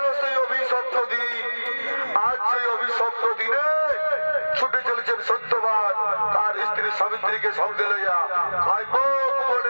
সেই অভিশপ্ত দিন। আজ সেই অভিশপ্ত দিনে ছুটে চলেছেন সত্যবান তার স্ত্রী সাবিত্রীকে সঙ্গে লইয়া কাইমক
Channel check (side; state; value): both; inverted; correlation -1.00